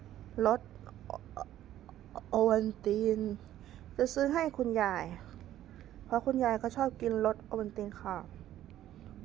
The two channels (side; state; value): left; quieter; 12.7 dB